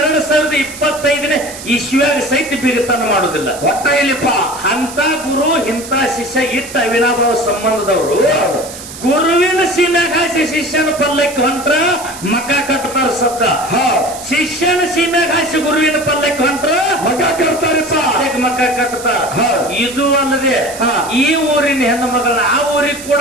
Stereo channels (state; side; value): noise; right; hiss, 13 dB below the sound